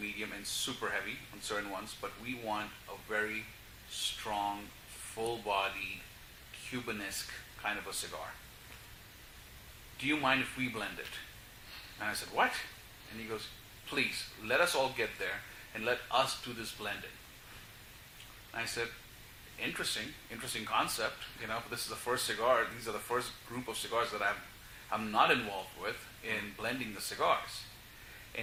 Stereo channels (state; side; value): identical; both; correlation 1.00